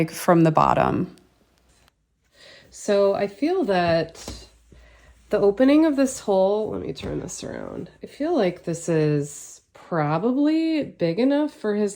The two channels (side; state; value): both; identical; correlation 1.00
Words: from the bottom. So I feel that the opening of this hole, let me turn this around. I feel like this is probably big enough for